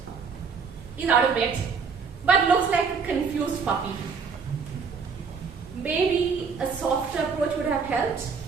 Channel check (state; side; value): quieter; left; 5.5 dB